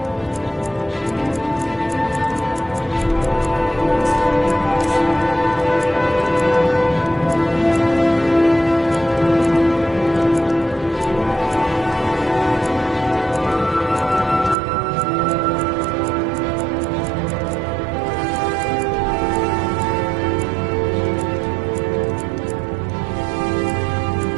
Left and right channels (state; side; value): drops out; left; at 14.6 s